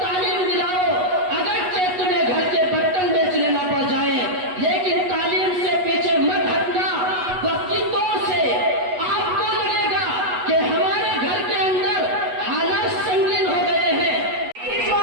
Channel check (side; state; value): left; late; 8.2 ms